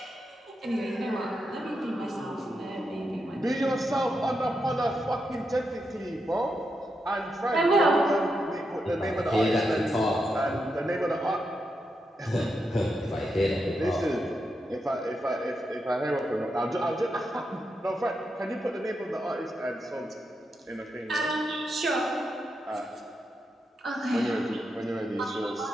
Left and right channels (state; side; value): normal; both; correlation 0.85